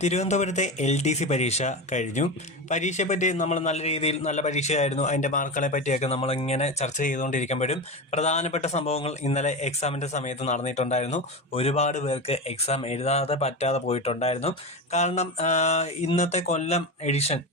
തിരുവനന്തപുരത്തെ LDC പരീക്ഷ കഴിഞ്ഞു. പരീക്ഷയെപ്പറ്റി നമ്മൾ നല്ല രീതിയിൽ നല്ല പരീക്ഷയായിരുന്നു, അതിൻ്റെ മാർക്കുകളെ പറ്റിയൊക്കെ നമ്മളിങ്ങനെ ചർച്ച ചെയ്തുകൊണ്ടിരിക്കുമ്പോഴും പ്രധാനപ്പെട്ട സംഭവങ്ങൾ ഇന്നലെ എക്സാമിൻ്റെ സമയത്ത് നടന്നിട്ടുണ്ടായിരുന്നു. ഒരുപാട് പേർക്ക് എക്സാം എഴുതാതെ പറ്റാതെ പോയിട്ടുണ്ടായിരുന്നു. കാരണം ഇന്നത്തെ കൊല്ലം എഡിഷൻ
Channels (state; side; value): normal; both; correlation 0.21